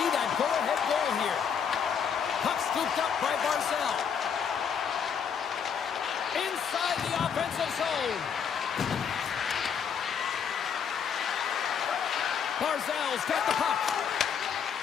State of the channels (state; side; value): quieter; right; 7.2 dB